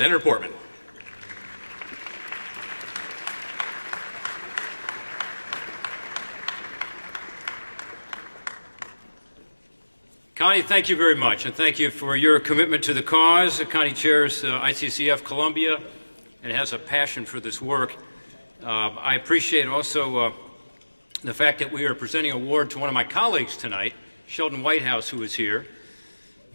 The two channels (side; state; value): both; inverted; correlation -1.00